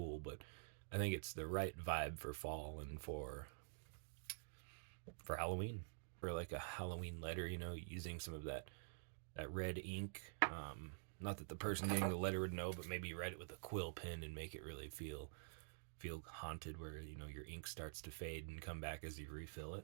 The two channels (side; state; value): left; silent; digital silence